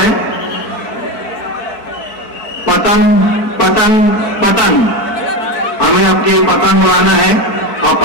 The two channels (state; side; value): late; right; 4.5 ms